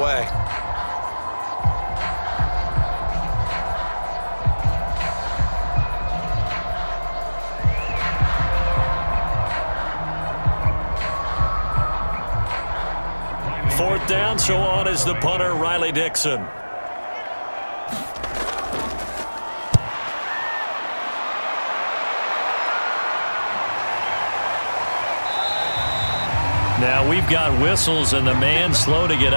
Fourth down, so on is the punter, Riley Dixon. Now we've got whistles and the man slow to get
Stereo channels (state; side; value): inverted; both; correlation -1.00